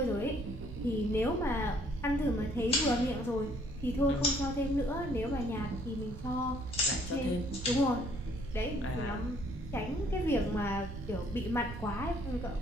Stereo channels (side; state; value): right; noise; rumble, 10 dB below the sound